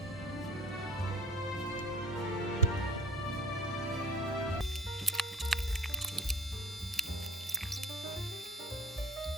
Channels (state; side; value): normal; both; correlation 0.44